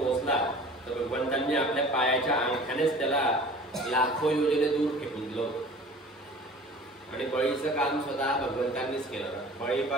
तर भगवंतांनी आपल्या पायाच्या अंगठ्यानेच त्याला लाखो योजने दूर फेकून दिलं आणि बळीचं काम स्वतः भगवंतांनीच केलं.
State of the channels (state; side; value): normal; both; correlation 0.44